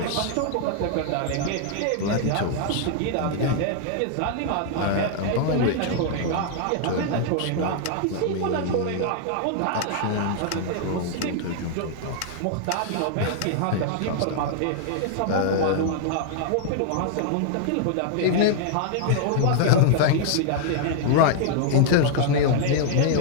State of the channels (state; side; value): different; both; correlation 0.00